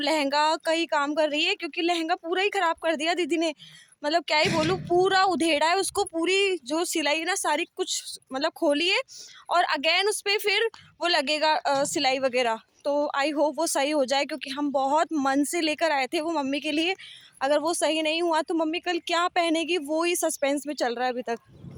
का ही काम कर रही है, क्योंकि लहंगा पूरा ही ख़राब कर दिया दीदी ने। मतलब क्या ही बोलूँ, पूरा उधेड़ा है उसको, पूरी जो सिलाई ना सारी कुछ मतलब खोली है, और अगेन उस पर फिर वो लगेगा सिलाई वगैरह। तो आई होप वो सही हो जाए, क्योंकि हम बहुत मन से लेकर आए थे वो मम्मी के लिए। अगर वो सही नहीं हुआ तो मम्मी कल क्या पहनेगी वो ही सस्पेंस में चल रहा है अभी तक।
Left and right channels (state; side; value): identical; both; correlation 1.00